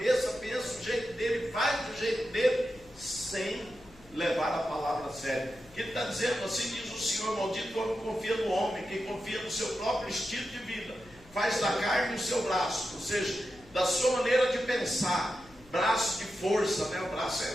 pensa do jeito dele, faz do jeito dele, sem levar a palavra a sério. Que ele está dizendo: assim diz o Senhor, maldito o homem que confia no homem, que confia no seu próprio estilo de vida, faz da carne o seu braço, ou seja, da sua maneira de pensar, braço de força, né? O braço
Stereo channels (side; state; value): left; noise; hum, 25 dB below the sound